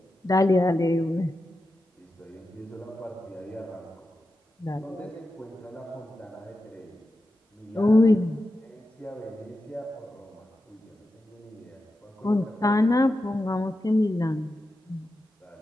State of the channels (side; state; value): both; normal; correlation 0.90